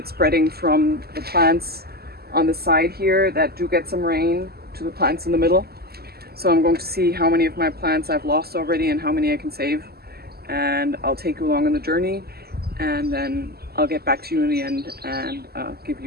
spreading from the plants on the side here that do get some rain to the plants in the middle. So I'm going to see how many of my plants I've lost already and how many I can save. And I'll take you along on the journey, and then I'll get back to you in the end and give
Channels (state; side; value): late; left; 0.46 ms